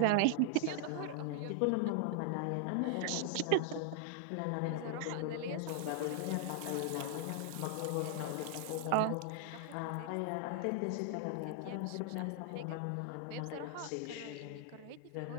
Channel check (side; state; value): both; different; correlation 0.00